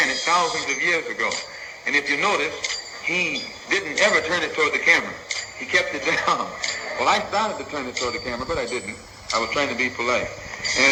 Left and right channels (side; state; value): both; identical; correlation 1.00